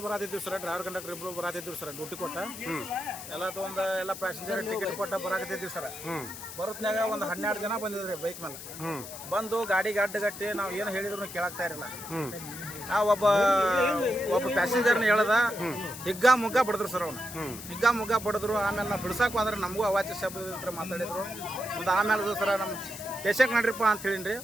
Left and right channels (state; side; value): noise; left; hiss, 12 dB below the sound